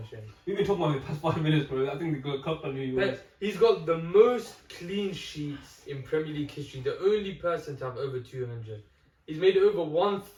We've been talking about it the past 5 minutes, bro. I think the good cup on you. But he's got the most clean sheets in Premier League history, the only person to have over 200. He's made over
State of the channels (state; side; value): identical; both; correlation 1.00